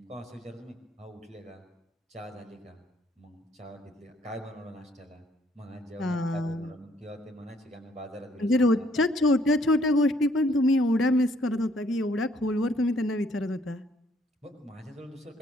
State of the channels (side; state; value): both; normal; correlation 0.66